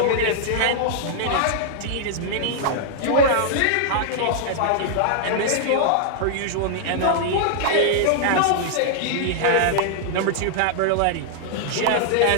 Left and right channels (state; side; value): different; both; correlation -0.01